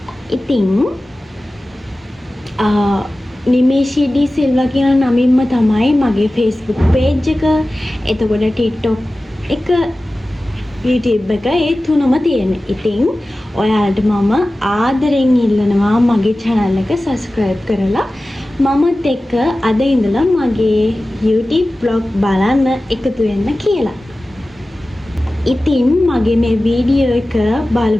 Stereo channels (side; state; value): both; normal; correlation 0.96